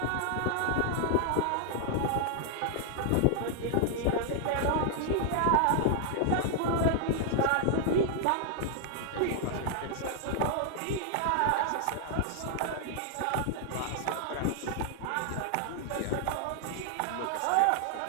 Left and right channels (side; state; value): both; different; correlation 0.00